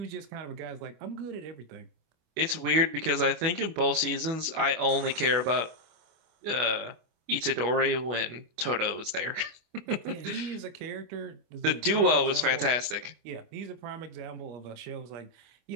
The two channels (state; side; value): late; left; 24 ms